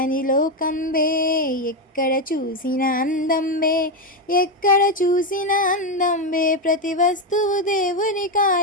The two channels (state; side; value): normal; both; correlation 0.07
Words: లోకం బే, ఎక్కడ చూసిన అందం బే, ఎక్కడ చూసిన అందం బే, ప్రతి వస్తువు దేవుని